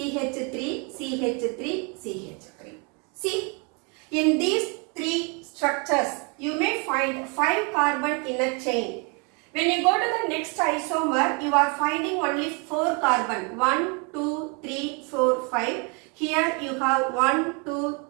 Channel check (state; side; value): quieter; left; 33.7 dB